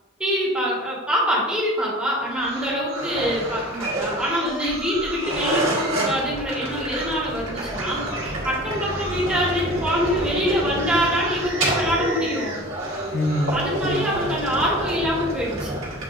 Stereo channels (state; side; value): normal; both; correlation 0.40